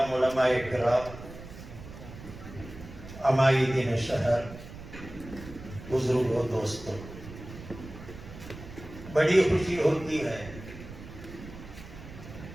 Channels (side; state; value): right; noise; rumble, 14 dB below the sound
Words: علماء کرام، عمائدین شہر، بزرگوں، دوستوں، بڑی خوشی ہوتی ہے۔